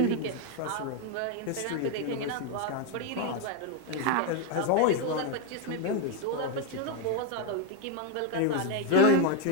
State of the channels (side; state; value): both; different; correlation 0.02